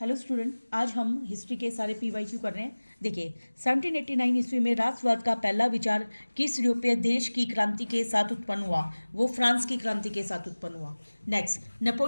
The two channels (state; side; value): inverted; both; correlation -1.00